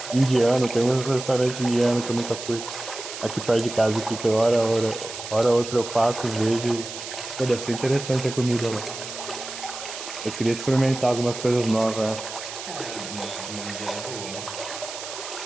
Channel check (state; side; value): noise; right; hiss, 9 dB below the sound